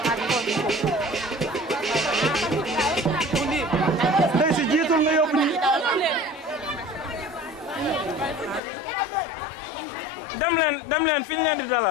dem leen fi ñu leen di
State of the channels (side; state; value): right; drops out; at 8.6 s